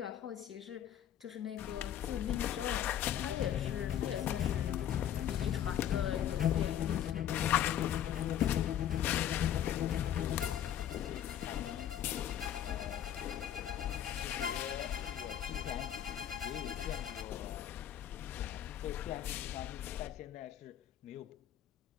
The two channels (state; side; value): quieter; right; 10.5 dB